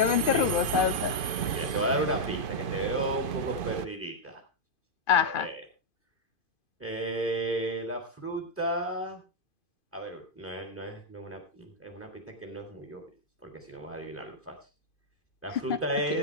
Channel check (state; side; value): late; right; 2.5 ms